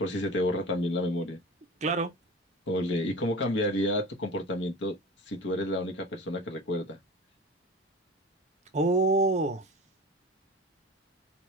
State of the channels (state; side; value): normal; both; correlation 0.35